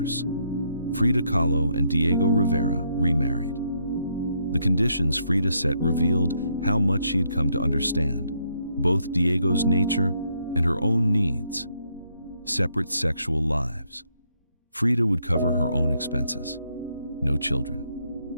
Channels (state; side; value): inverted; both; correlation -0.75